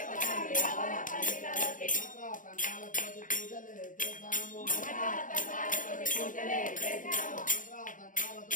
స్వామి రవ్వల పందిళ్ళలోకి. తంత్రాలతోటి పూజలే చేశాము తంత్రాలతోటి పూజలే చేసినాము.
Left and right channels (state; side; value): late; right; 0.38 ms